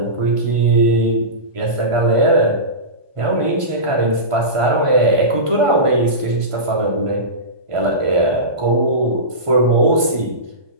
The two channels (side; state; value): left; late; 1.5 ms